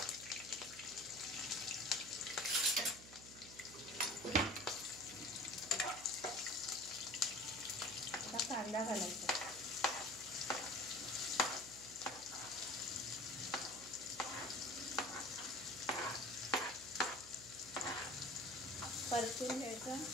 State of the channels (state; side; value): noise; right; hum, 16 dB below the sound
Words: आता कांदा घालायचा, परतून घ्यायचा,